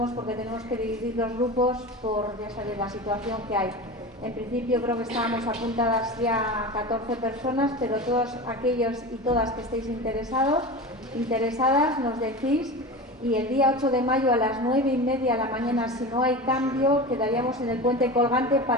porque tenemos que dividir los grupos por, ya sabéis, la situación que hay. En principio creo que estábamos apuntadas ya 14 personas, pero todos aquellos y todas que estéis interesadas, nos decís. Y el día 8 de mayo a las 9:30 de la mañana, si no hay cambio, quedaríamos en el puente colgante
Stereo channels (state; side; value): normal; both; correlation 0.29